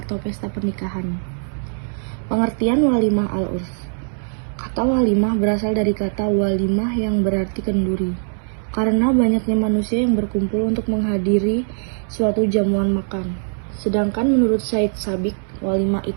pesta pernikahan. Pengertian walimah al-urs. Kata walimah berasal dari kata walimah yang berarti kenduri. Karena banyaknya manusia yang berkumpul untuk menghadiri suatu jamuan makan. Sedangkan menurut Said Sabiq, walimah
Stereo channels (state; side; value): silent; left; digital silence